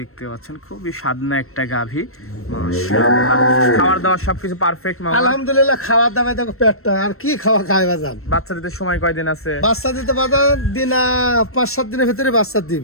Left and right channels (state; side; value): late; right; 0.62 ms